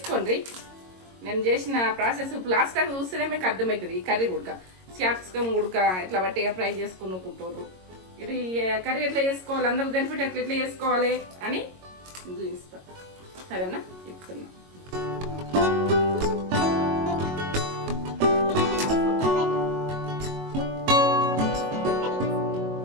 నేను చేసిన ప్రాసెస్ లాస్ట్ టైం చూస్తేనే మీకు అర్థమవుతుంది. ఈ కర్రీ ఉడక క్యాప్సికమ్ ఉడక ఇట్లా బట్టిగా ఫ్రై చేసుకునుకుంటారు. ఇది కర్రీ ఎట్లా చేసుకోవాలి, అందరూ బెనిఫిట్ ఎట్లా చేసుకోవాలి అని చూపిస్తా. సరేనా? ఇప్పుతున్నా.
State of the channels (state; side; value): late; left; 22 ms